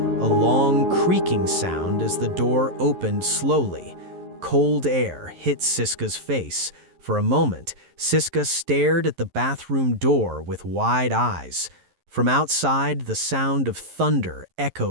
a long creaking sound as the door opened slowly. Cold air hit Siska's face. For a moment, Siska stared at the bathroom door with wide eyes. From outside, the sound of thunder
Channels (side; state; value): left; late; 11 ms